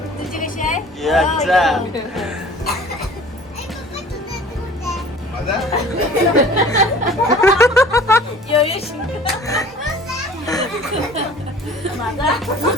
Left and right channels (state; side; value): normal; both; correlation 0.47